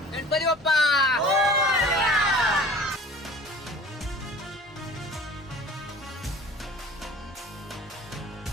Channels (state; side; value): normal; both; correlation 0.44